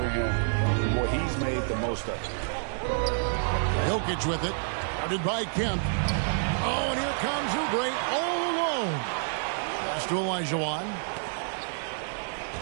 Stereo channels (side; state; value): left; silent; digital silence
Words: him. Boy, he's made the most of it. Jokic with it. Guarded by Kemp. Oh, and here comes Oubre all alone. Pass to Olajuwon.